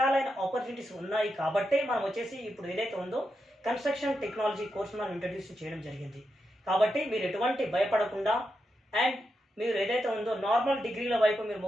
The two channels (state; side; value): normal; both; correlation 0.86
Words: ఆపర్చునిటీస్ ఉన్నాయి కాబట్టే మనం వచ్చేసి ఇప్పుడు ఏదైతే ఉందో కన్స్ట్రక్షన్ టెక్నాలజీ కోర్సు మనం ఇంట్రడ్యూస్ చేయడం జరిగింది. కాబట్టి మీరు ఎటువంటి భయపడకుండా అండ్ మీరు ఏదైతే ఉందో నార్మల్ డిగ్రీల వైపు మీరు